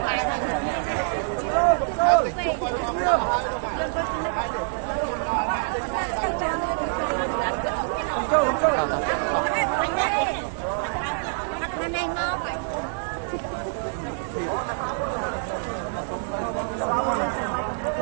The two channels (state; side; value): silent; left; digital silence